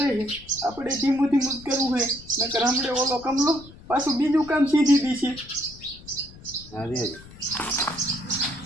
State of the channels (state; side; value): noise; left; rumble, 19 dB below the sound